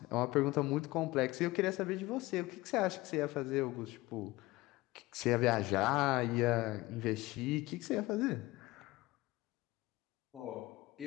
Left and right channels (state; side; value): quieter; right; 19.9 dB